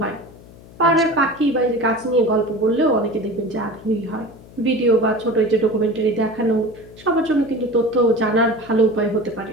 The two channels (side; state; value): left; noise; hum, 21 dB below the sound